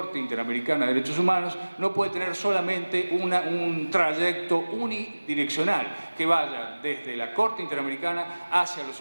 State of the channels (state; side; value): inverted; both; correlation -1.00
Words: Interamericana de Derechos Humanos no puede tener solamente un trayecto unidireccional que vaya desde la Corte Interamericana hacia los